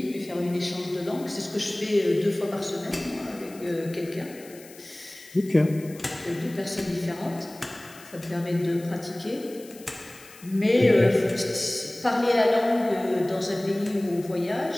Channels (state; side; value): noise; left; hiss, 20 dB below the sound